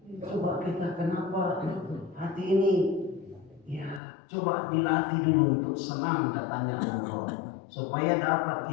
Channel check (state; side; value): drops out; right; at 4.0 s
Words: Coba kita kenapa hati ini coba dilatih dulu untuk senang datangnya Ramadan, supaya dapat